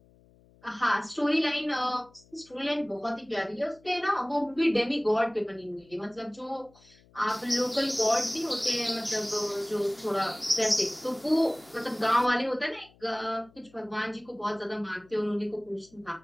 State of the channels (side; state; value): left; noise; hum, 28 dB below the sound